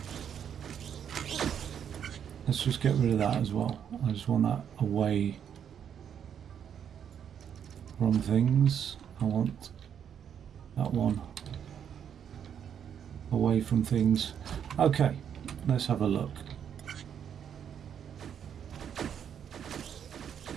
Let's just get rid of that as well. I just want that away Wrong things. I want that one away from things. Okay, let's have a look.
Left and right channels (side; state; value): left; quieter; 8.5 dB